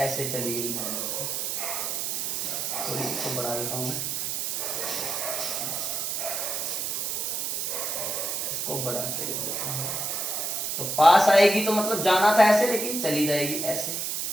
चली गई नॉर्मल की। थोड़ी इसको बढ़ा देता हूं मैं, इसको बढ़ा के लिख देता हूं। तो पास आएगी तो मतलब जाना था ऐसे, लेकिन चली जाएगी ऐसे।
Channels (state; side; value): noise; right; hiss, 1 dB below the sound